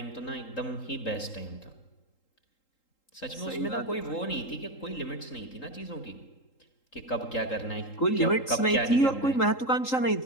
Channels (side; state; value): right; late; 3.8 ms